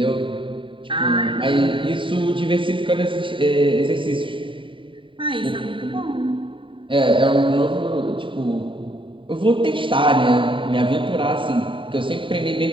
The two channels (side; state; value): left; late; 0.25 ms